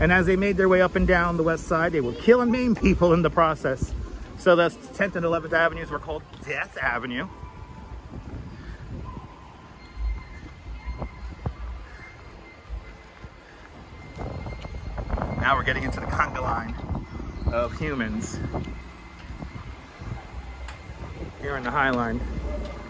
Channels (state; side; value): identical; both; correlation 1.00